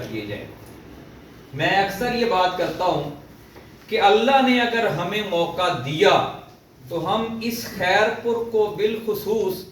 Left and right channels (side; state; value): both; identical; correlation 1.00